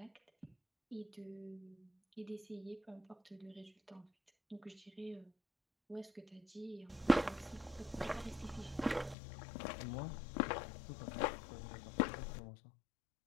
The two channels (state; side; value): drops out; right; at 9.2 s